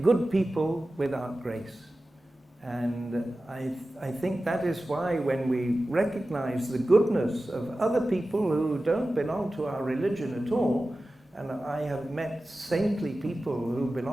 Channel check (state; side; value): normal; both; correlation 0.95